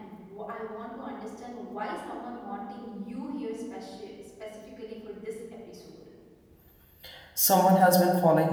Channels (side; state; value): both; identical; correlation 1.00